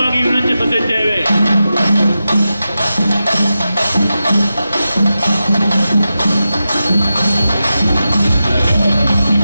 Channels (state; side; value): inverted; both; correlation -0.91